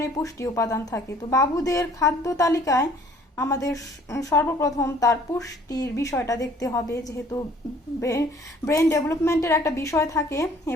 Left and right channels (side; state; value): both; normal; correlation 0.56